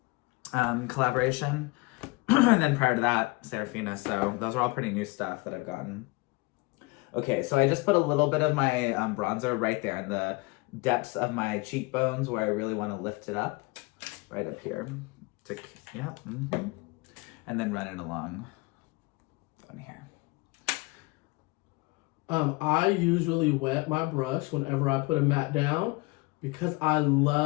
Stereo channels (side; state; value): right; quieter; 24.7 dB